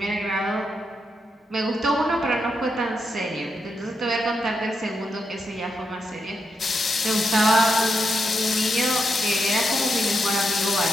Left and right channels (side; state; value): both; normal; correlation 0.83